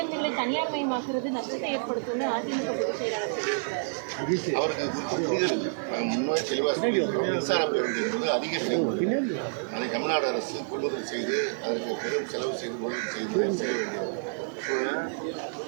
தனியார் மயமாக்குறது நஷ்டத்தை ஏற்படுத்தும் அவருக்கு முன்னாடி தெளிவாக மின்சார பேருந்து என்பது அதிக செலவு. அதை தமிழ்நாடு அரசு கொள்முதல் செய்து அதற்கு பெரும் செலவு செய்து முதலீடு செய்ய வேண்டிய சூழல்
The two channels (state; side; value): silent; left; 59 dB below the other